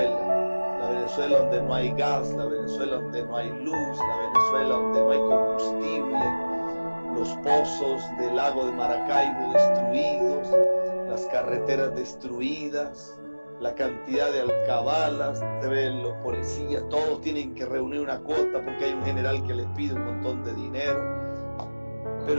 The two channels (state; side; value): inverted; both; correlation -1.00